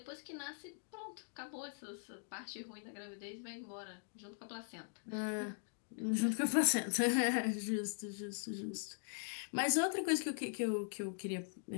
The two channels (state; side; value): silent; right; digital silence